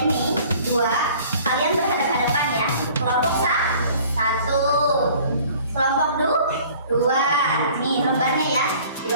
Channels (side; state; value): both; inverted; correlation -0.51